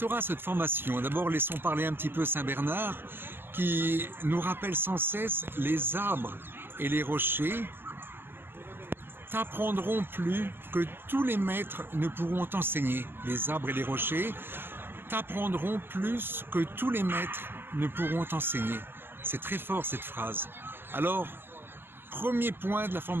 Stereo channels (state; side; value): late; left; 0.10 ms